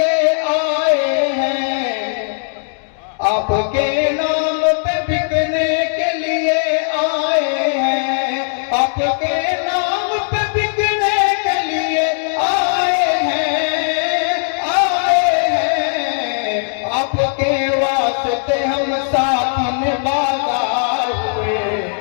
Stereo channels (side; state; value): right; silent; digital silence